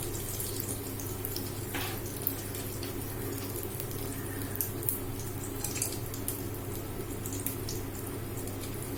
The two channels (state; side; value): identical; both; correlation 1.00